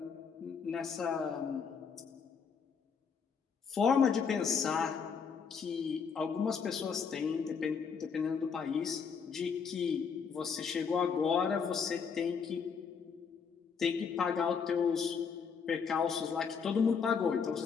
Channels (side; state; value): right; quieter; 6.1 dB